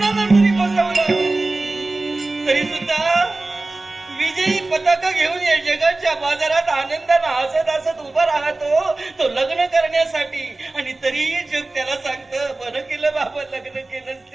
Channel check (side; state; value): left; quieter; 3.1 dB